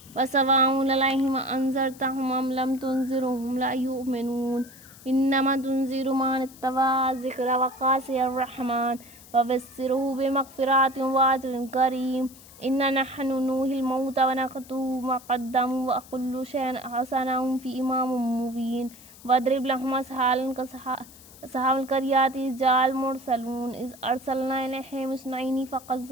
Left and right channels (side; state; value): left; noise; hiss, 21 dB below the sound